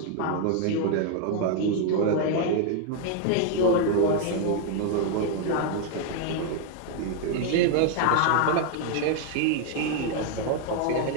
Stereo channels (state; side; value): different; both; correlation 0.00